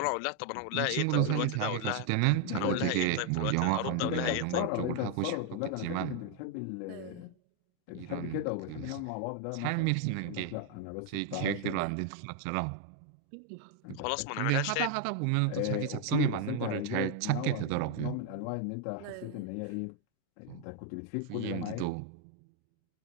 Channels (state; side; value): different; both; correlation 0.01